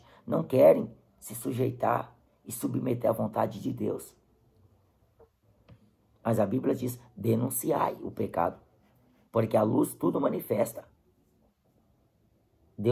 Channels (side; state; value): both; identical; correlation 1.00